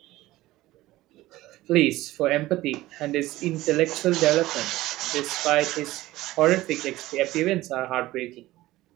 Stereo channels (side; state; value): left; quieter; 17.1 dB